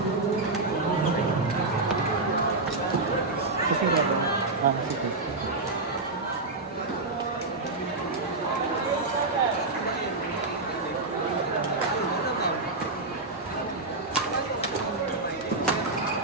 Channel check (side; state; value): left; quieter; 3.4 dB